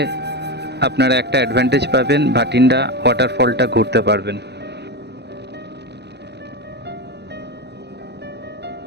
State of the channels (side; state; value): left; late; 0.49 ms